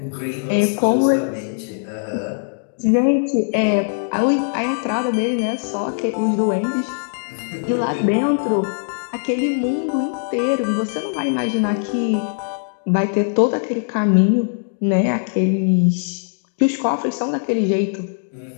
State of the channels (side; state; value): right; silent; digital silence